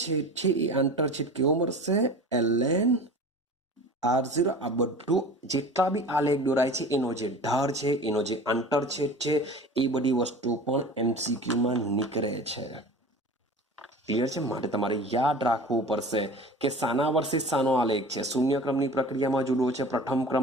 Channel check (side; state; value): both; normal; correlation 0.38